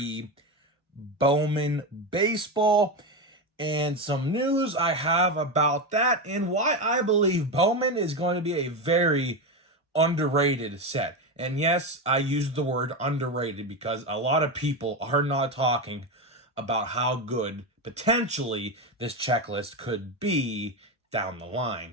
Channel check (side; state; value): both; normal; correlation 0.15